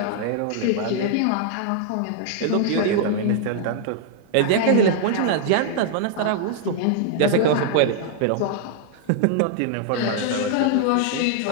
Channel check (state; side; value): different; both; correlation -0.01